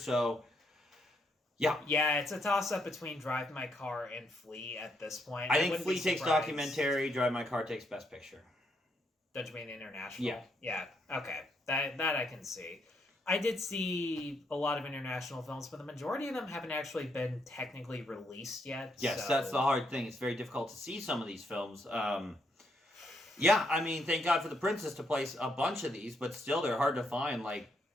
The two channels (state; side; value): normal; both; correlation 0.76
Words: Yeah, it's a toss-up between Drive My Car and Flee at this point. I think Flee takes documentary, Drive My Car takes Best Picture. Don't you mean international? Yeah, okay. That I can see. I did see a lot of international films, but the majority of them haven't actually been technically released yet. Yes, that's the hard thing. It's very difficult to see some of these films. Thank God for The Princess to place a bunch of these, but still they're hard to find, like...